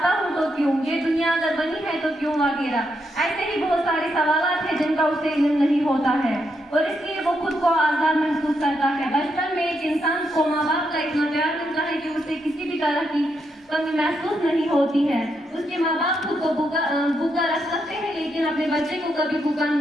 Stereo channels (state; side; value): normal; both; correlation 0.80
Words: ہوں تو کیوں، یہ دنیا اگر بنی ہے تو کیوں وغیرہ۔ ایسے ہی بہت سارے سوالات ہیں جن کا اسے علم نہیں ہوتا ہے اور اس لیے وہ خود کو آزاد محسوس کرتا ہے۔ بچپن میں ایک انسان کو ماں باپ کا اتنا پیار ملتا ہے کہ اسے کسی بھی طرح کی کمی محسوس نہیں ہوتی ہے۔ اس کے ماں باپ خود کو بھوکا رکھ سکتے ہیں لیکن اپنے بچے کو کبھی بھوکا